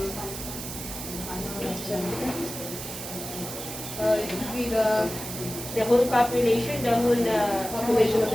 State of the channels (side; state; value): right; noise; hiss, 9 dB below the sound